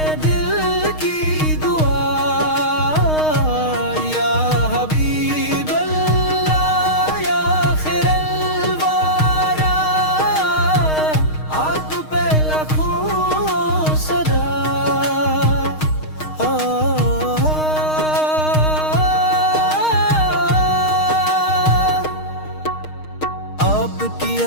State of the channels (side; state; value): right; late; 6.5 ms